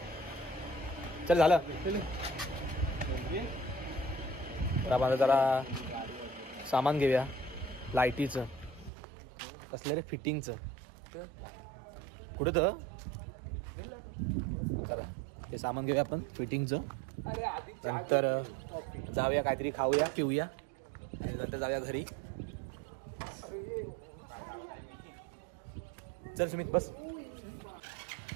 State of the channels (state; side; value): drops out; left; at 8.9 s